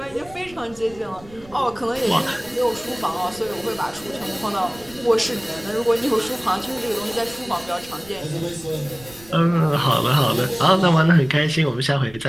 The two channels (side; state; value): right; noise; rumble, 22 dB below the sound